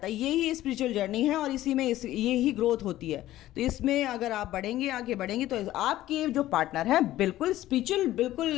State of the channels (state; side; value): quieter; right; 14.6 dB